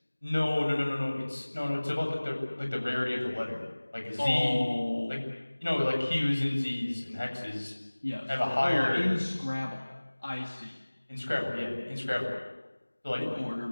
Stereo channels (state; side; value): inverted; both; correlation -1.00